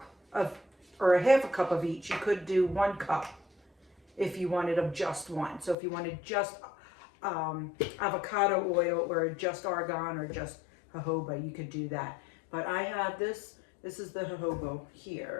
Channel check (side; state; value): right; drops out; at 5.8 s